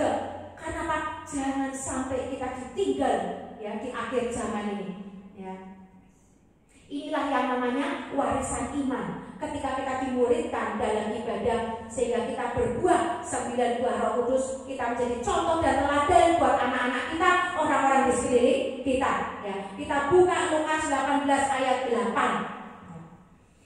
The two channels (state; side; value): identical; both; correlation 1.00